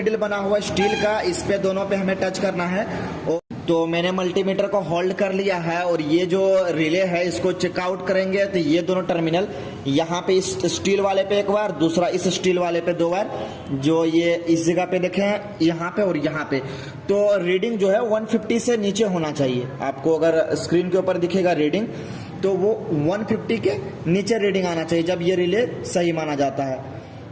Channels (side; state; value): both; identical; correlation 1.00